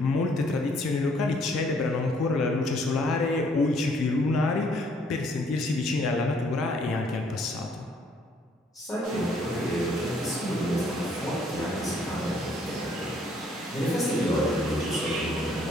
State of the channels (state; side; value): normal; both; correlation 0.64